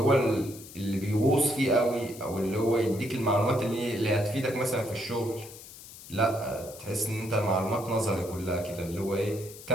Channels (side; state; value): left; noise; hiss, 16 dB below the sound